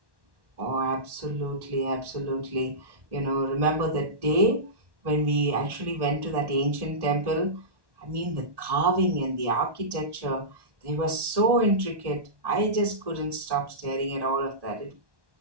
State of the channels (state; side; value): late; left; 1.1 ms